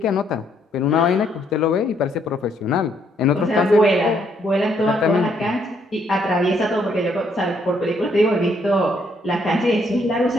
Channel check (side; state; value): both; normal; correlation 0.71